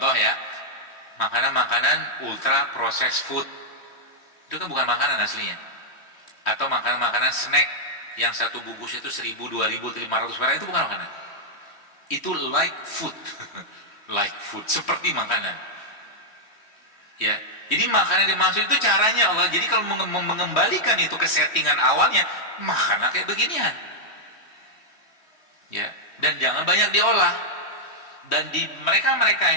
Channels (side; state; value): right; late; 3.1 ms